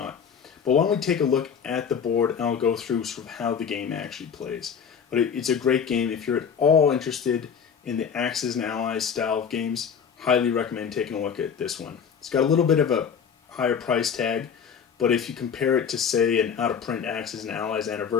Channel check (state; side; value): quieter; right; 7.0 dB